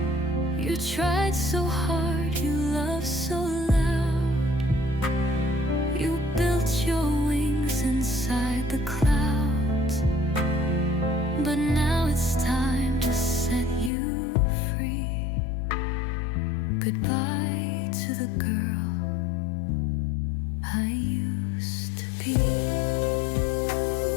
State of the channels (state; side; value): drops out; right; at 13.9 s